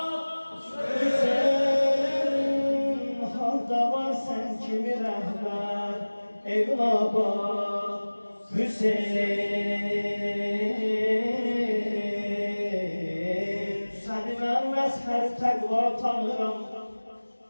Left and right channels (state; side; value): inverted; both; correlation -1.00